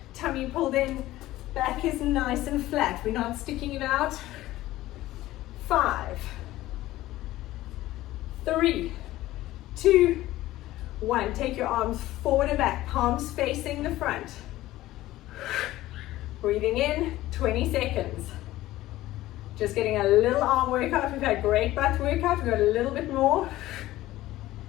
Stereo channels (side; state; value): right; quieter; 16.1 dB